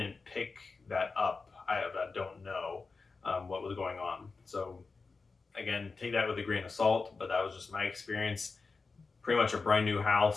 pick that up. I don't know what was going on. So again, take that with a grain of salt, but that was just my experience. Pretty much a brand new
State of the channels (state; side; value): quieter; right; 4.3 dB